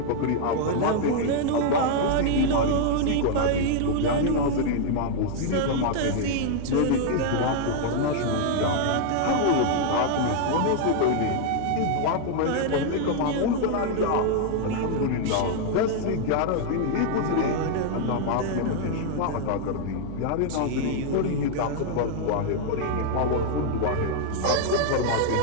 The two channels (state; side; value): different; both; correlation 0.00